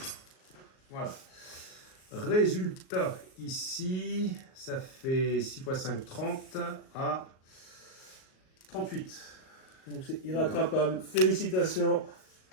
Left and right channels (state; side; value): late; right; 38 ms